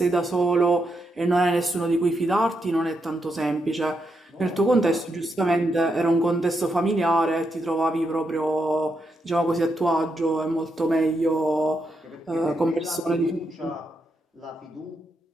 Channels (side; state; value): both; normal; correlation 0.82